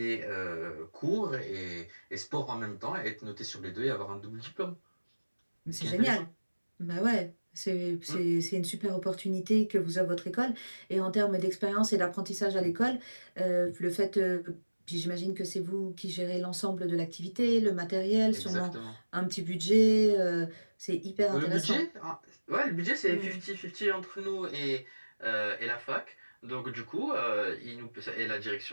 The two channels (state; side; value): inverted; both; correlation -1.00